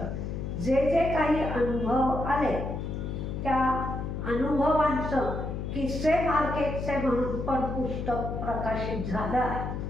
जे जे काही अनुभव आले त्या अनुभवांचं किस्से मार्केटचे म्हणून पण पुस्तक प्रकाशित झालं आहे.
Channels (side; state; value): left; noise; hum, 4 dB below the sound